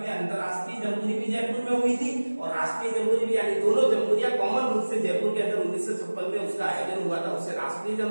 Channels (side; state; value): both; inverted; correlation -1.00